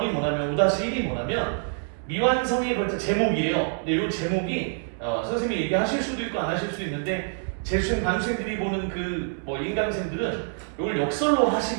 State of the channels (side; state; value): left; silent; 61 dB below the other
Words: 뭐냐면 5-1이 뭐냐면 미완성에 걸쳐 제목이에요. 근데 요 제목이 선생님이 얘기하실 수도 있고 안 하실 수도 있는데 재수생 반수생들이 보는 그 인강생들은 이걸 역설로